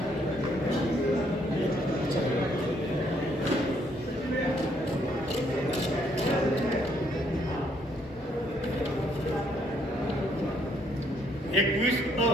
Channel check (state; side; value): normal; both; correlation 0.69